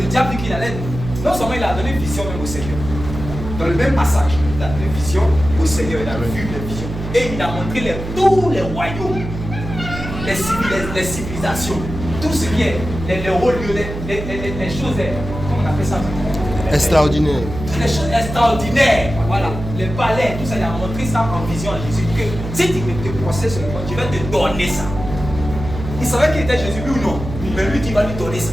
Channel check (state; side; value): noise; right; hum, 8 dB below the sound